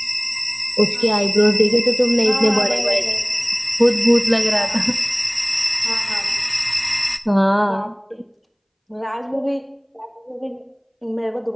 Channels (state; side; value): identical; both; correlation 1.00